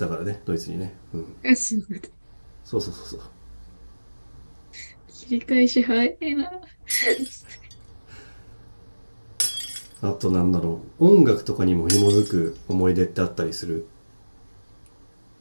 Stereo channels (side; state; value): both; inverted; correlation -1.00